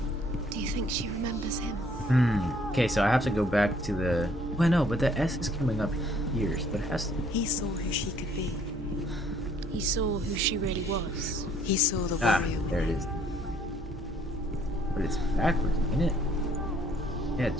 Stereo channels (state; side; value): noise; right; hum, 13 dB below the sound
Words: Do you think she remembers him? Okay, so I have to go back to the... Well, no, but the S is coming up here, so it has to... He saw who she could be. He saw who she really was. He saw the Ah, warrior. there it is. But it's backwards, isn't it? Yeah,